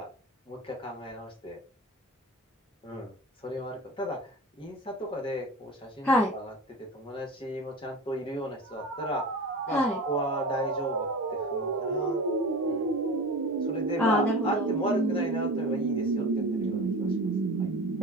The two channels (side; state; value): both; normal; correlation 0.32